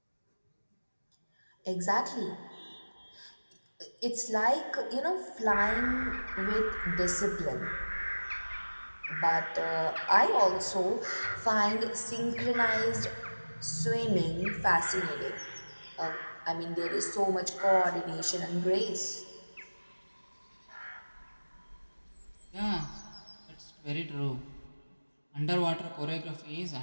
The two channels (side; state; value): both; inverted; correlation -1.00